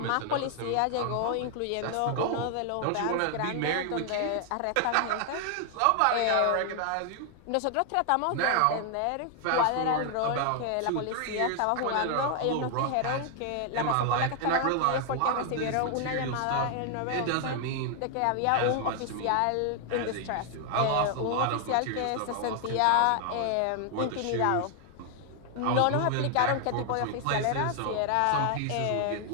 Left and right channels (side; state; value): both; different; correlation 0.00